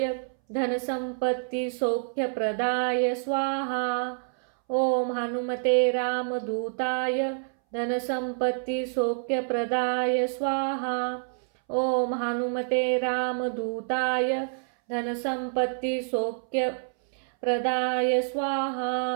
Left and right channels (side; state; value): left; silent; 60 dB below the other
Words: धनसंपत्ति सौख्यप्रदाय स्वाहा। ओम हनुमते रामदूताय धनसंपत्ति सौख्यप्रदाय स्वाहा। ओम हनुमते रामदूताय धनसंपत्ति सौख्यप्रदाय